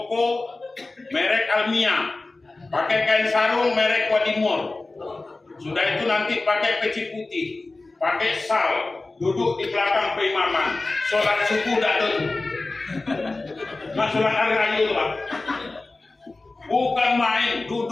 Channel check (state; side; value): quieter; right; 3.3 dB